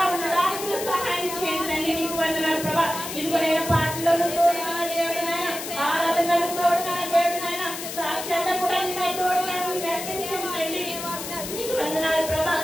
ఉండడానికి సహాయం చేయండి తండ్రి. నీకు వందనాలు ప్రభా. ఇదిగో నేను పాటలను తోడుగా దేవుడు నైనా, ఆరాధనలు తోడుగా దేవుడు నైనా, సాక్ష్యాల్లో కూడా నీకు తోడుగా నడిపించండి తండ్రి. నీకు వందనాలు ప్రభా.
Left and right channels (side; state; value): left; noise; hiss, 8 dB below the sound